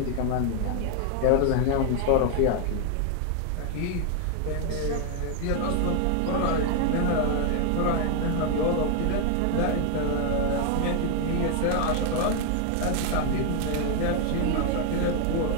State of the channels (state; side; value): different; both; correlation 0.00